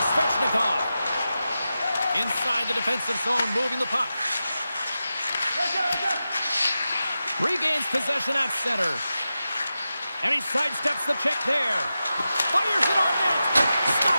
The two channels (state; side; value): inverted; both; correlation -0.92